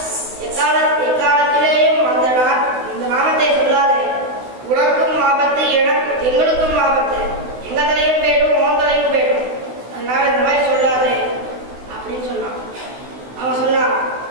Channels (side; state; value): left; late; 16 ms